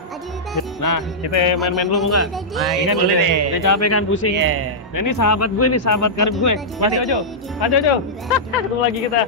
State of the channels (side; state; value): both; normal; correlation -0.11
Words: Nah, kita main-main dulu mau nggak? Nah, Ini kan boleh udah, deh. udah capek kan pusing. Iya. Nah ini sahabat gue nih, sahabat karib gue. Mas Jojo. Mas Jojo. Ketemu lagi kita.